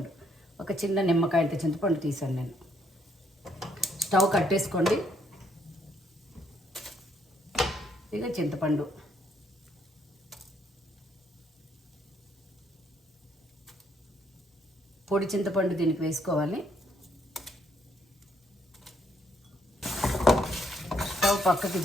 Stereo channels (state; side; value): normal; both; correlation 0.71